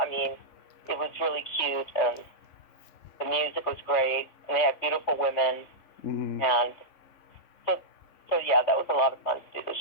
mean, it was really cute and the music was great, and they had beautiful women, Mm-hmm. and so yeah, that was a lot of fun to do the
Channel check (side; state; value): right; late; 3.5 ms